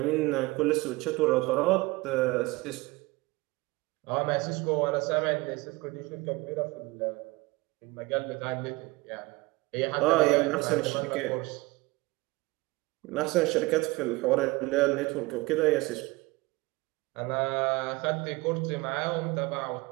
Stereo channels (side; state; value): left; quieter; 22.6 dB